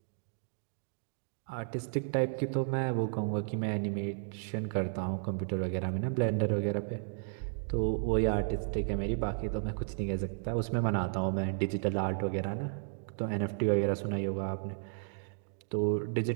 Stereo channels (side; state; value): left; silent; digital silence